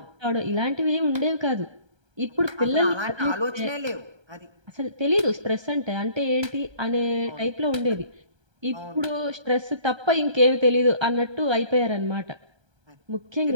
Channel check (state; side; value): late; left; 1.3 ms